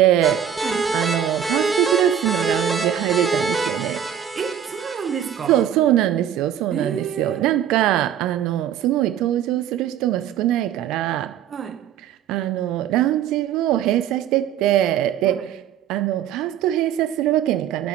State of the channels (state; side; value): quieter; left; 9.7 dB